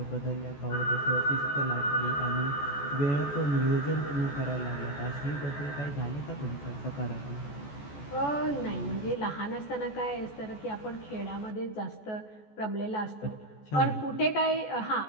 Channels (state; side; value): late; right; 14 ms